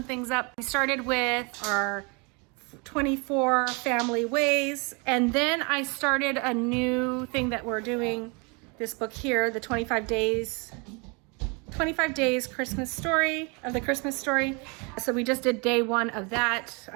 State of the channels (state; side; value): quieter; left; 31.2 dB